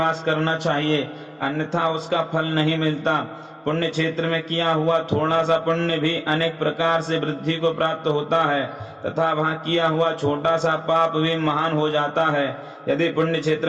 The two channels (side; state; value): both; identical; correlation 1.00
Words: करना चाहिए, अन्यथा उसका फल नहीं मिलता। पुण्य क्षेत्र में किया हुआ थोड़ा सा पुण्य भी अनेक प्रकार से वृद्धि को प्राप्त होता है तथा वहां किया हुआ छोटा सा पाप भी महान हो जाता है। यदि पुण्य